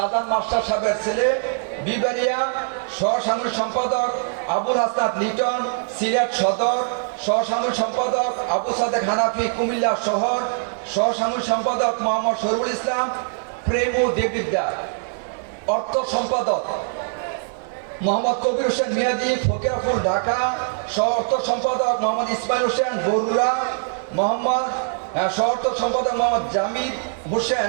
মাস্টার সাহেবের ছেলে, বিবারিয়া। সহসাংগঠনিক সম্পাদক আবুল হাসনাত লিটন, সিলেট সদর। সহসাংগঠনিক সম্পাদক আবু সাদেক হানাফি, কুমিল্লা শহর। সহসাংগঠনিক সম্পাদক মোহাম্মদ শরীফুল ইসলাম, প্রেমু দেবিদ্যার। অর্থ সম্পাদক মোহাম্মদ কবির হোসেন মিয়াজি, ফকিরাপুর, ঢাকা। সহ অর্থ সম্পাদক মোহাম্মদ ইসমাইল হোসেন, বরুড়া। সহ অর্থ সম্পাদক মোহাম্মদ জামিদ হোসেন,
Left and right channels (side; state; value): left; silent; digital silence